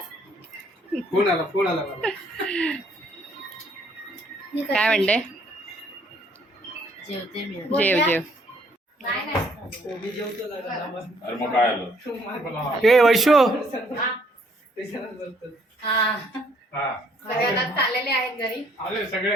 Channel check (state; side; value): normal; both; correlation 0.65